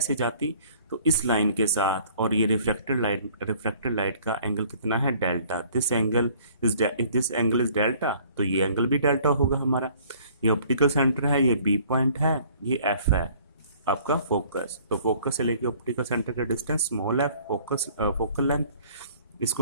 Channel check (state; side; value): inverted; both; correlation -0.55